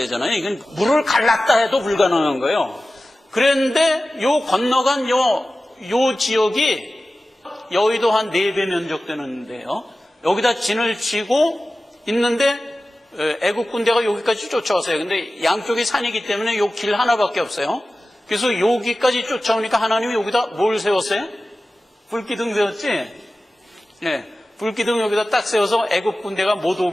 이건 물을 갈랐다 해도 불가능한 거예요. 그런데 요 건너간 요 지역이 여의도 한 4배 면적 되는데요. 여기다 진을 치고 있는데 애국 군대가 여기까지 쫓아왔어요. 근데 양쪽이 산이기 때문에 요 길 하나밖에 없어요. 그래서 여기까지 쫓아오니까 하나님이 여기다 뭘 세웠어요? 불기둥 세웠지? 네, 불기둥 여기다 딱 세워서 애국 군대가 못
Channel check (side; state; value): both; normal; correlation 0.96